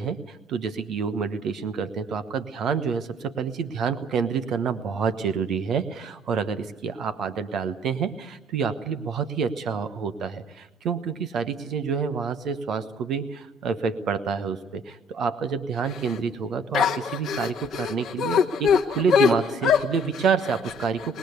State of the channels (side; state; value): both; normal; correlation 0.58